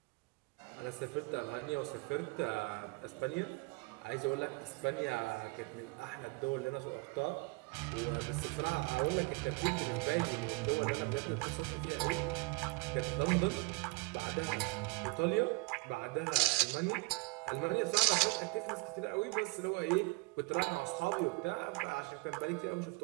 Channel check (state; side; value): quieter; left; 27.9 dB